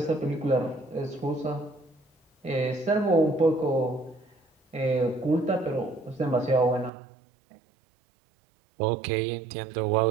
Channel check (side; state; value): left; drops out; at 6.9 s